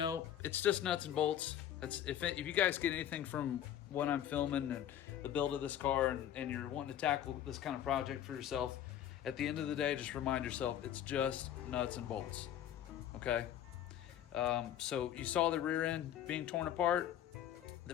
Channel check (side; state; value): right; quieter; 10.9 dB